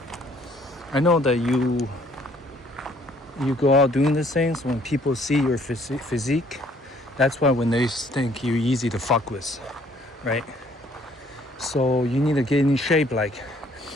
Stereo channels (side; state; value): both; normal; correlation 0.62